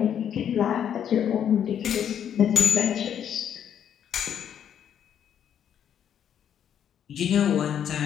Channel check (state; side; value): quieter; right; 9.1 dB